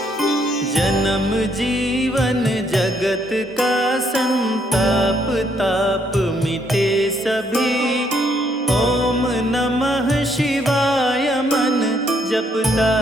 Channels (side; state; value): both; normal; correlation 0.71